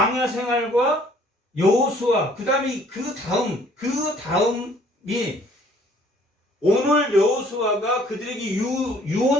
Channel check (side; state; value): both; normal; correlation 0.58